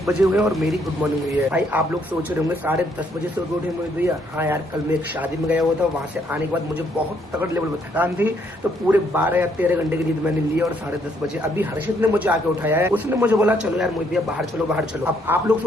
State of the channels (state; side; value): normal; both; correlation 0.70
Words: बजे हुए और मेरी गुड मॉर्निंग हुई है। भाई आप लोग सोच रहे होंगे 10:30 बजे से उठे मोहित भैया। हाँ यार, कल मैं एक शादी में गया हुआ था, वहाँ से आने के बाद मुझे बहुत तगड़ लेवल में थकान थी, तो पूरे 12 या 13 घंटे की नींद मैंने ली और 10:30 बजे अभी हर्षित ने मुझे आके उठाया है। उसने मुझे बोला चलो यार मोहित भैया बाहर चलो बाहर चलो। अब आप लोग